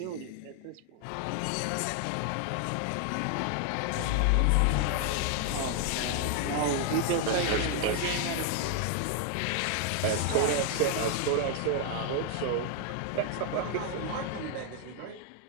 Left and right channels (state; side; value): different; both; correlation 0.00